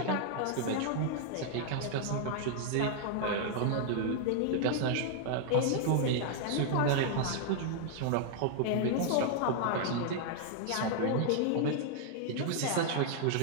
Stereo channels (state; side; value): different; both; correlation 0.00